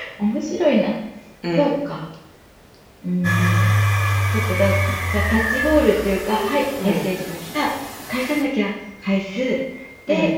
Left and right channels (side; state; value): both; identical; correlation 1.00